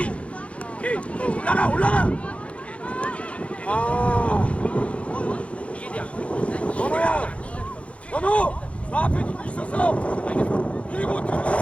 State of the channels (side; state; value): right; late; 0.062 ms